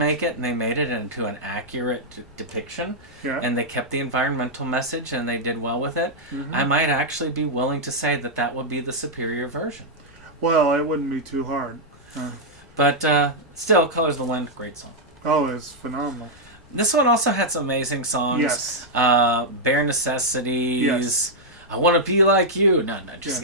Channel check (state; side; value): normal; both; correlation -0.05